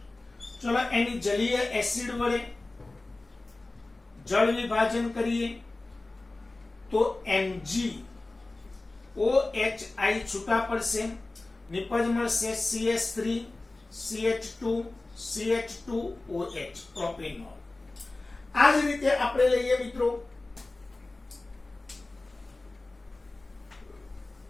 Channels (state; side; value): quieter; right; 3.1 dB